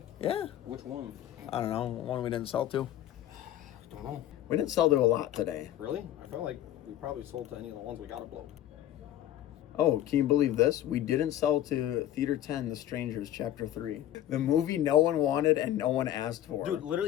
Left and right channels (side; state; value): right; quieter; 12.3 dB